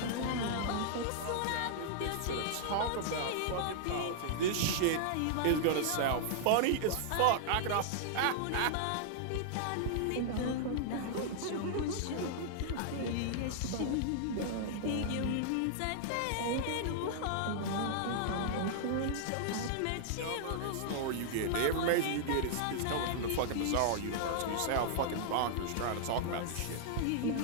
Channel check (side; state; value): both; different; correlation -0.01